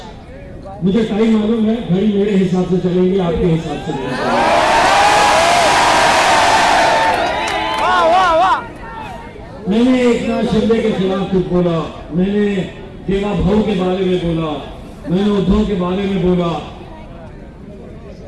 मुझे टाइम मालूम है, घड़ी मेरे हिसाब से चलेंगे, आपके हिसाब से नहीं। मैंने एक ना शिंदे के खिलाफ कुछ बोला, मैंने देवा भाऊ के बारे में बोला, मैंने उद्धव के बारे में बोला,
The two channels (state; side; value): identical; both; correlation 1.00